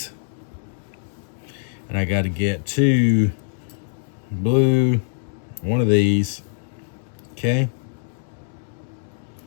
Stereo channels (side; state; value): right; silent; digital silence